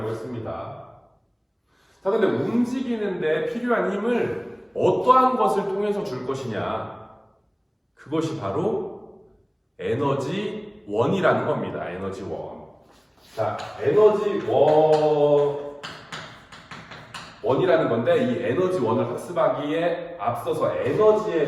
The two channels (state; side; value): identical; both; correlation 1.00